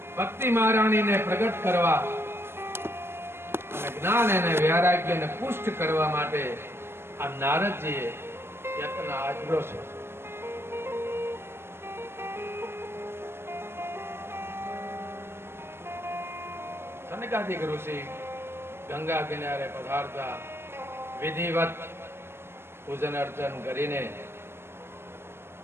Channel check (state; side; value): late; left; 0.12 ms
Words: ભક્તિ મહારાણીને પ્રગટ કરવા અને જ્ઞાન અને વૈરાગ્યને પુષ્ટ કરવા માટે આ નારદજીએ યત્ન આચર્યો છે. સનકાદિક ઋષિ ગંગા કિનારે પધારતા વિધિવત પૂજન અર્ચન કરીને